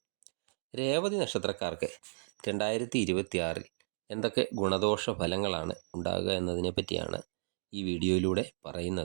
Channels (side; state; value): left; silent; digital silence